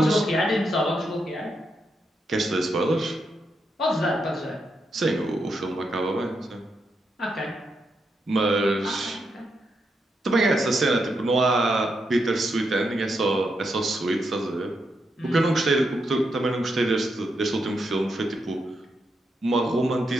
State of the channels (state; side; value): normal; both; correlation 0.82